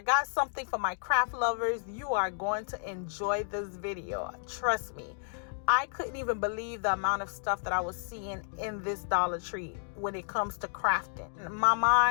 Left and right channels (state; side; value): silent; right; digital silence